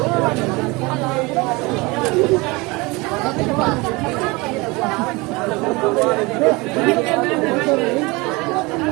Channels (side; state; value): left; quieter; 24.8 dB